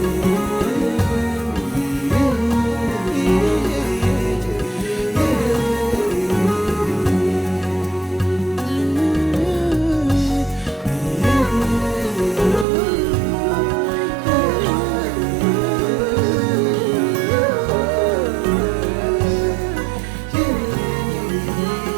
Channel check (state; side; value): drops out; left; at 12.7 s